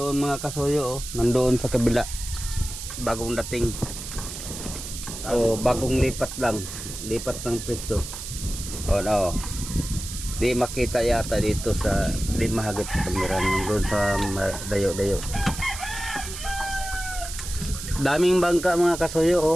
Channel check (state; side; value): noise; right; hiss, 9 dB below the sound